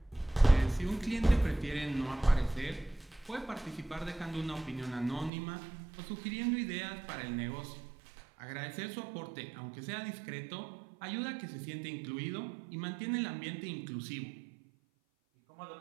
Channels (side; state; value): left; drops out; at 5.3 s